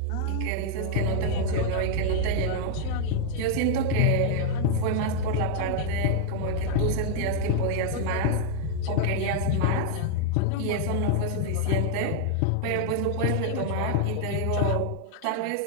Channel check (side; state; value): both; different; correlation 0.00